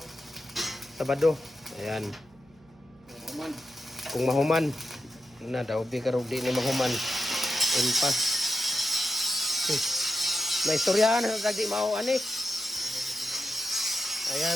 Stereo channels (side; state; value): right; noise; hum, 29 dB below the sound